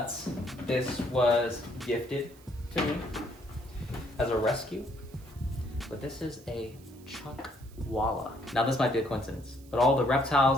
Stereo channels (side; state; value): right; noise; hiss, 25 dB below the sound